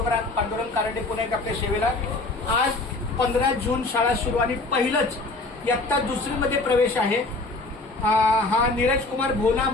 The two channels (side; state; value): right; quieter; 3.2 dB